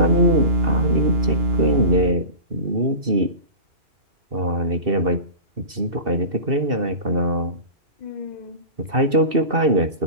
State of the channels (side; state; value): left; late; 2.7 ms